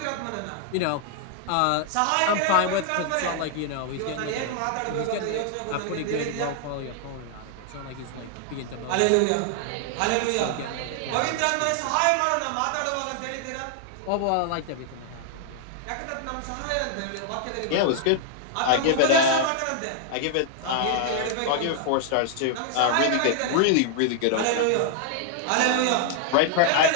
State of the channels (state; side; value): different; both; correlation -0.01